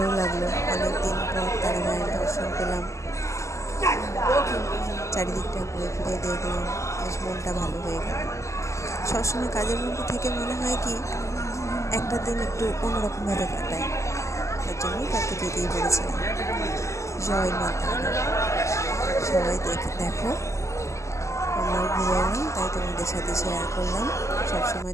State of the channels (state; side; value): late; right; 0.14 ms